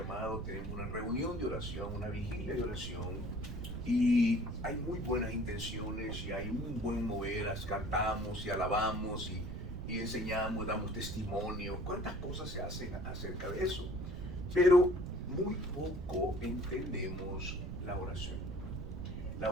tenemos una reunión de oración, una vigilia de oración, y hay muy buenas intenciones y hay un buen mover, cantamos y alabamos y enseñamos, damos testimonio, cuántas cosas se hacen acerca de eso, pero muy poco entendemos la oración. La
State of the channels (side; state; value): right; noise; rumble, 6 dB below the sound